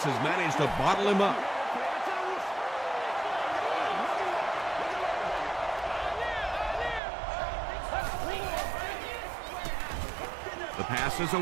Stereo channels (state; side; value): drops out; left; at 7.0 s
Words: has managed to bottle him up. The pass is